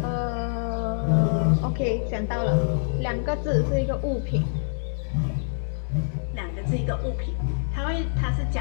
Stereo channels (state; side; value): silent; right; digital silence